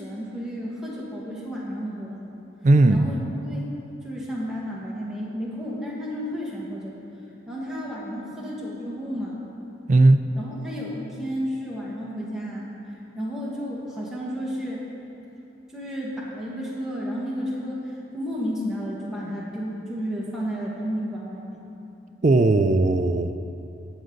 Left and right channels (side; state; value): both; normal; correlation 0.83